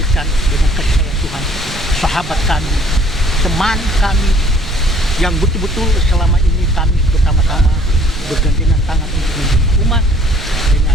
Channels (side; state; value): right; noise; rumble, 13 dB below the sound